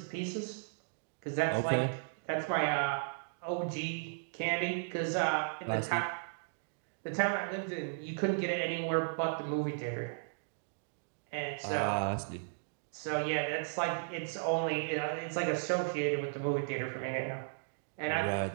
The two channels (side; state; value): left; silent; digital silence